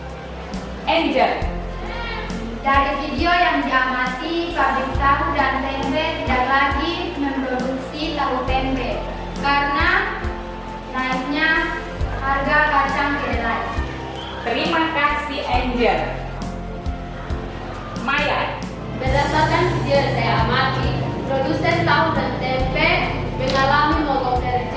Angel. Dari video yang diamati, pabrik tahu dan tempe tidak lagi memproduksi tahu tempe karena naiknya harga kacang kedelai. Terima kasih Angel. Maya. Berdasarkan video yang saya amati, produsen tahu dan tempe mengalami mogok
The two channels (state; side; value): identical; both; correlation 1.00